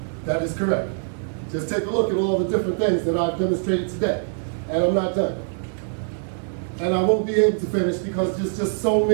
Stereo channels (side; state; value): left; silent; digital silence